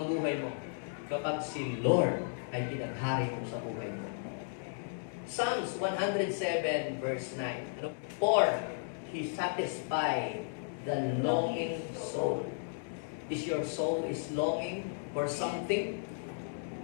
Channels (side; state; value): right; silent; digital silence